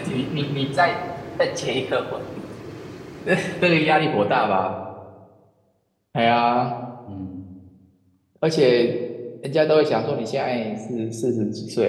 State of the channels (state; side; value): identical; both; correlation 1.00